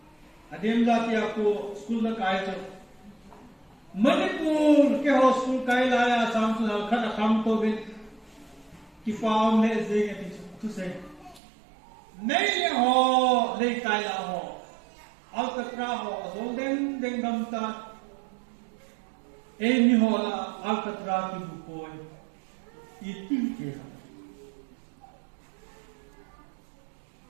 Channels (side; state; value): left; drops out; at 11.4 s